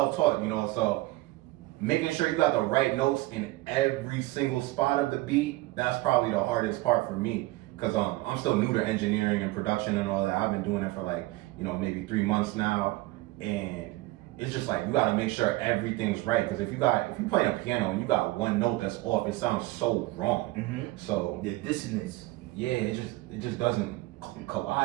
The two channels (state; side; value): quieter; left; 19.9 dB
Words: you know. So making sure you got the right notes in every single spot of the beat, that's probably the hardest part for me. Cause I'm still new to engineering and production and all that. I've been doing it for like, maybe 3 months now, and it's just like you gotta make sure everything's right. Cause if you playing a piano and you got one note that's off, it sounds so wrong. Mm-hmm. So the dissonance. Yeah, it just doesn't